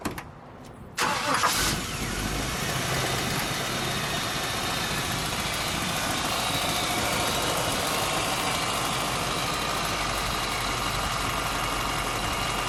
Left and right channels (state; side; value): identical; both; correlation 1.00